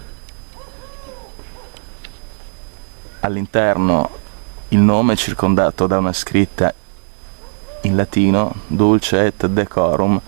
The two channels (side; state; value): left; silent; 67 dB below the other